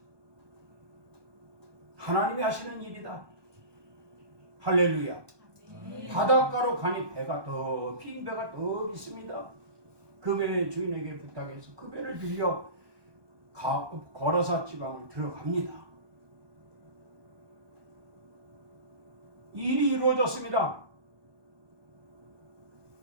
하나님이 하시는 일이다. 할렐루야. 바닷가로 가니 빈 배가 더 있습니다. 그 배의 주인에게 부탁해서 그 배를 빌려 거라사 지방을 들어갑니다. 일이 이루어졌습니다.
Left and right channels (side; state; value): left; late; 1.2 ms